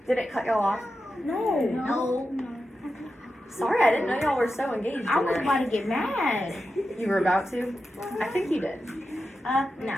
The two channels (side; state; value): both; normal; correlation 0.90